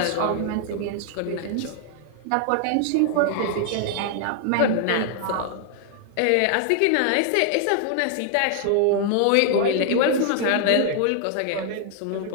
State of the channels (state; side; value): different; both; correlation 0.00